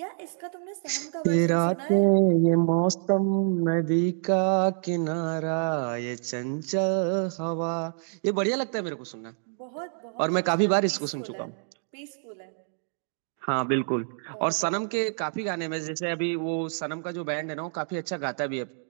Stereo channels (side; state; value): left; silent; digital silence